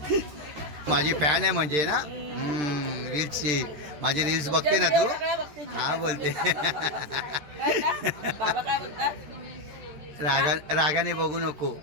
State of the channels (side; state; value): left; late; 13 ms